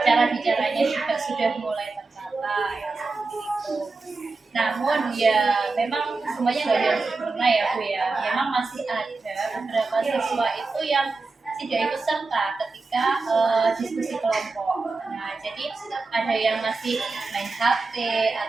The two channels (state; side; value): quieter; left; 3.8 dB